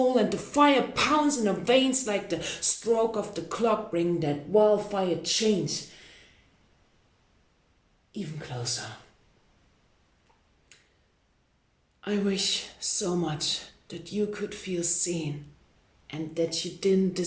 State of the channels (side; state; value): both; identical; correlation 1.00